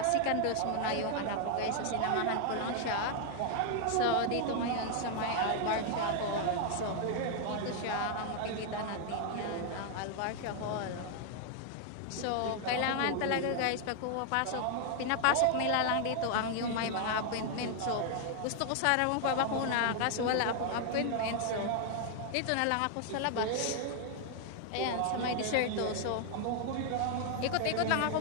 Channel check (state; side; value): different; both; correlation 0.00